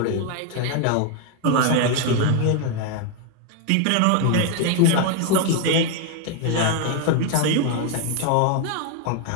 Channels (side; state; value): both; different; correlation 0.01